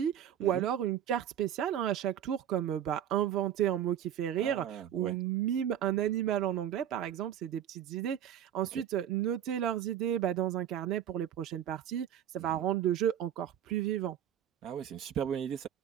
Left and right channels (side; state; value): left; quieter; 10.4 dB